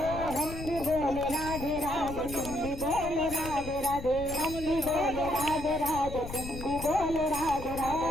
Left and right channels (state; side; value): noise; left; rumble, 10 dB below the sound